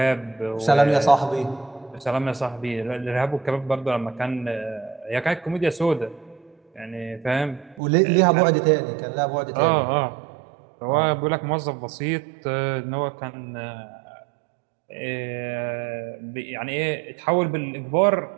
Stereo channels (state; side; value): drops out; left; at 7.8 s